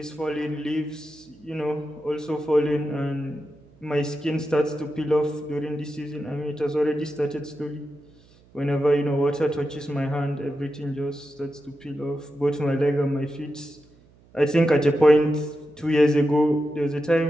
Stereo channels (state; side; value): noise; right; hum, 28 dB below the sound